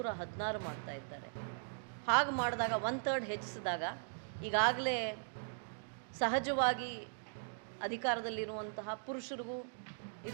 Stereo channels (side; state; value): left; silent; digital silence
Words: ಮಾಡ್ತಾ ಇದ್ದಾರೆ. ಹಾಗೆ ಮಾಡಿದಾಗ 1/3 ಹೆಚ್ಚಿಸಿದಾಗ ಈಗಾಗಲೇ ಸಹಜವಾಗಿ ಅಧಿಕಾರದಲ್ಲಿರುವಂತಹ ಪುರುಷರಿಗೂ